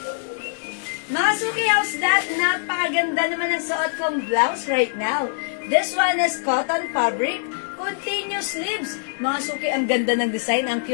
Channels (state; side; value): silent; right; digital silence